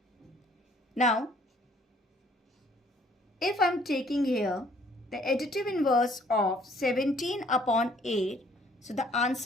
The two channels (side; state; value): both; normal; correlation 0.61